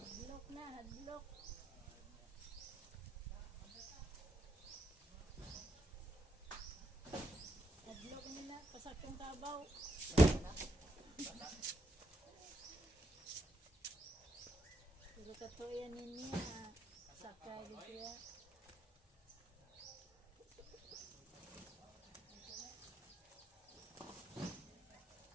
na, hadlok. Hadlok nila, pasakong kabaw. Pero katuyan niya, sakay di siya.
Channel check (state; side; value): normal; both; correlation 0.81